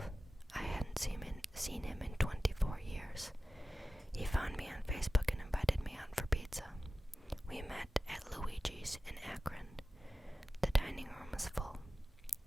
I hadn't seen him in 24 years. He found me on Facebook and invited me out for pizza. We met at Luigi's in Akron. The dining room was full.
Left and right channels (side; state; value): both; normal; correlation 0.95